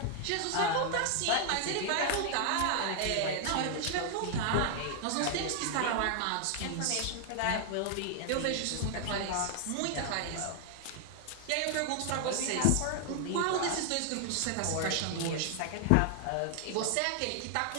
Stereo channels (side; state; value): both; different; correlation 0.00